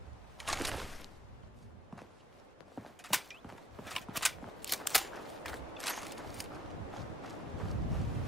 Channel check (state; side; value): normal; both; correlation 0.65